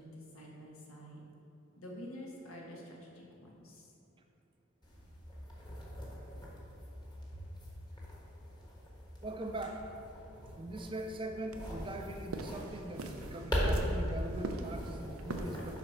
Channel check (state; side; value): normal; both; correlation 0.66